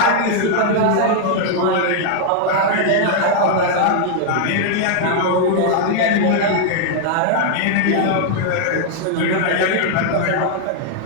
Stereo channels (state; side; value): different; both; correlation -0.01